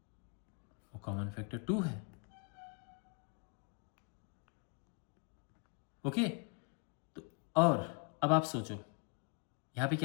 वो कॉमन फैक्टर 2 है। ओके, तो और अब आप सोचो, यहां पे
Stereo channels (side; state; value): right; quieter; 37.0 dB